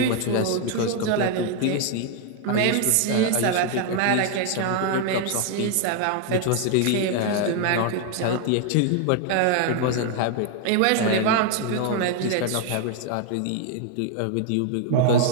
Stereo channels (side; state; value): both; different; correlation 0.00